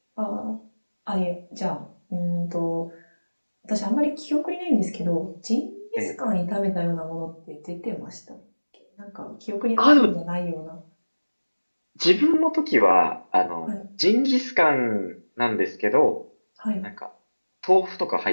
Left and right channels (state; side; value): inverted; both; correlation -1.00